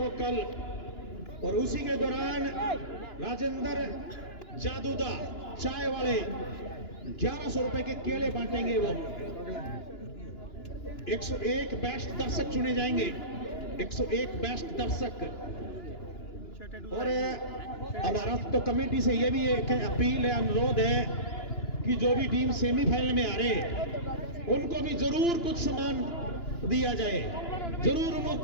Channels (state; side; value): late; right; 2.9 ms